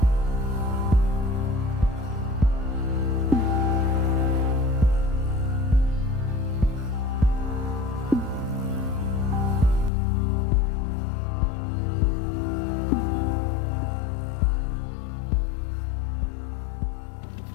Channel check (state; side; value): drops out; right; at 9.9 s